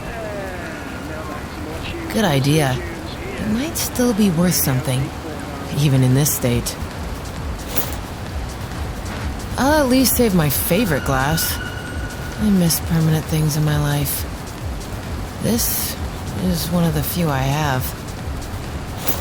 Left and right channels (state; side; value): identical; both; correlation 1.00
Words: Good idea. It might still be worth something, even in this state. I'll at least save my favorite glass. I miss permanent things in my life. This is one of the few I have.